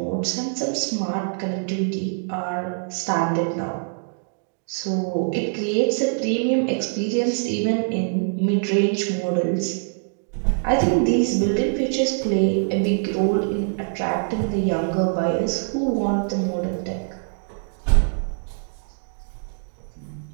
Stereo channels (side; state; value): left; silent; 63 dB below the other